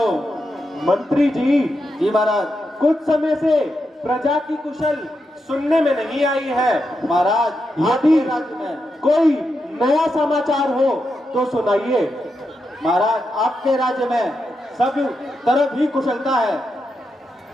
मंत्री जी। जी महाराज। कुछ समय से प्रजा की कुशल सुनने में नहीं आई है महाराज, यदि राज्य में कोई नया समाचार हो तो सुनाइए। महाराज, आपके राज्य में सब तरफ ही कुशलता है।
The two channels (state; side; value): normal; both; correlation 0.85